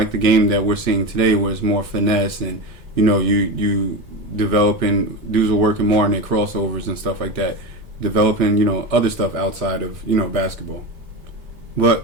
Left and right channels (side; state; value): both; normal; correlation 0.21